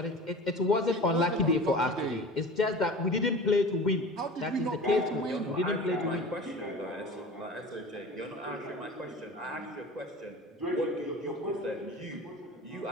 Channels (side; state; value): both; normal; correlation 0.37